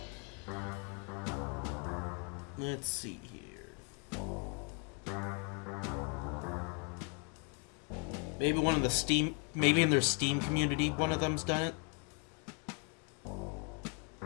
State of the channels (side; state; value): right; quieter; 34.6 dB